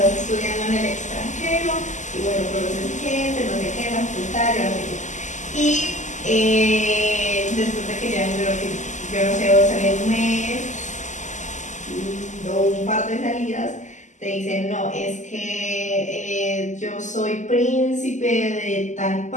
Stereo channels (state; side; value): late; right; 0.35 ms